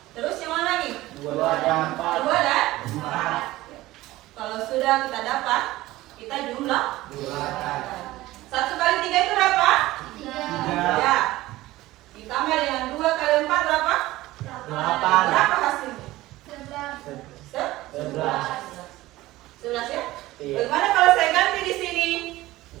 Terus yang mana lagi? 2 dan 4. 2 dan 4. Kalau sudah kita dapat, kita jumlah 1 kali 3 itu berapa? 3. Ya. Ditambah dengan 2 kali 4 berapa? 8. Berapa hasilnya? 11. 11 ya? Iya. Bagaimana kalau saya ganti di sini?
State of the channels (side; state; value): left; quieter; 17.4 dB